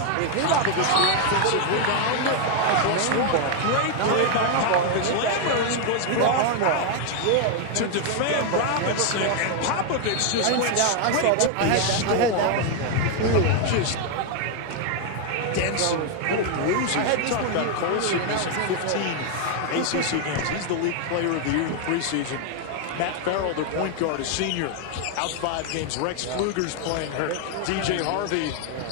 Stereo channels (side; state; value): both; different; correlation 0.00